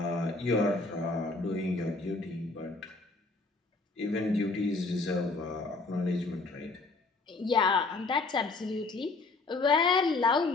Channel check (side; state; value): right; quieter; 3.6 dB